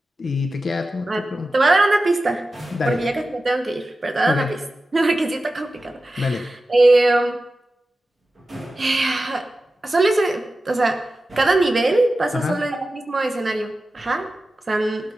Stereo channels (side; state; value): both; normal; correlation 0.94